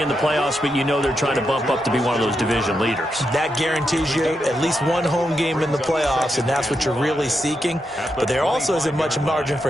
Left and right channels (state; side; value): normal; both; correlation 0.84